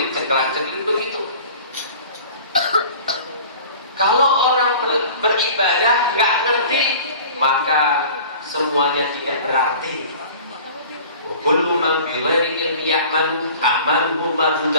begitu. Kalau orang beribadah nggak ngerti, maka semuanya tidak berarti. Kullu man bi ghairi ilmi ya'malu amaluhu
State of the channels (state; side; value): inverted; both; correlation -0.43